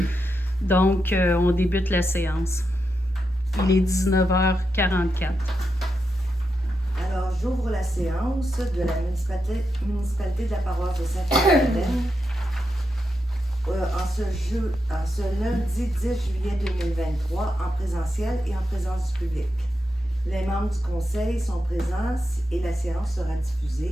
Donc, on débute la séance. Il est 19h44. Alors, j'ouvre la séance de la municipalité de la paroisse de Sainte-Madeleine en ce lundi 10 juillet 2023 en présentiel et en présence du public. Les membres du conseil sont présents et la séance sera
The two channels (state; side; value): normal; both; correlation 0.86